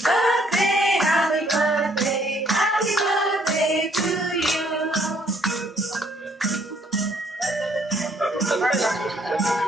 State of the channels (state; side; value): normal; both; correlation 0.65